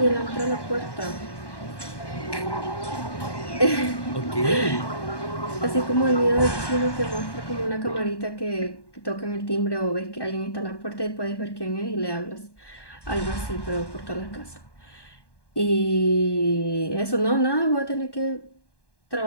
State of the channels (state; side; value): late; right; 1.1 ms